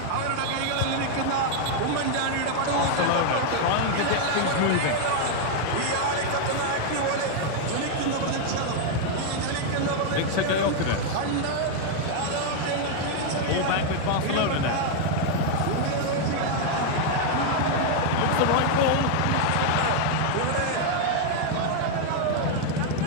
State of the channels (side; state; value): both; different; correlation 0.00